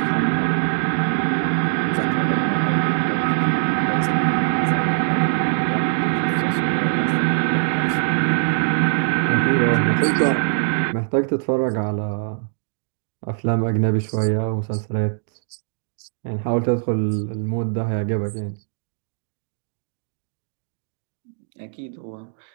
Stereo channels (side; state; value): left; silent; digital silence